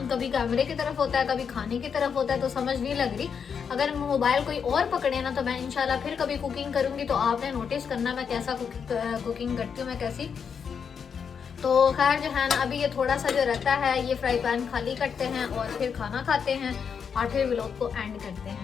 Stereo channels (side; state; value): right; quieter; 6.7 dB